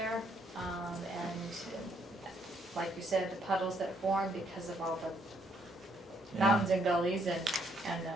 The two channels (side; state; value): both; normal; correlation 0.71